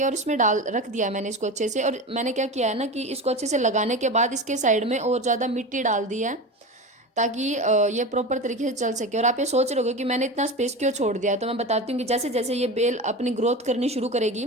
और इसमें डाल रख दिया मैंने इसको अच्छे से। और मैंने क्या किया है ना कि इसको अच्छे से लगाने के बाद इसके साइड में और ज़्यादा मिट्टी डाल दी है, ताकि ये प्रॉपर तरीके से चल सके। और आप ये सोच रहे होगे कि मैंने इतना स्पेस क्यों छोड़ दिया, तो मैं बताती हूँ कि जैसे जैसे ये बेल अपनी ग्रोथ करनी शुरू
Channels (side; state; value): both; normal; correlation 0.27